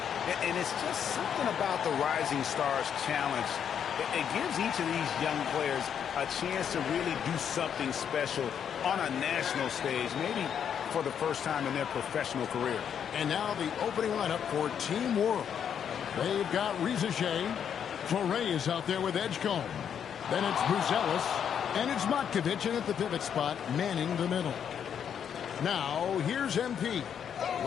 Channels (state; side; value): quieter; right; 8.3 dB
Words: And it's just something about the Rising Stars Challenge. It gives each of these young players a chance to really do something special on a national stage, maybe for the first time in their professional career. And now the opening lineup for Team World. They've got Reza Shea. Torrey is out there with Edgecombe. Then it's Buzelis. And it's Matkovic in at the pivot spot, manning the middle. Now, here's MP.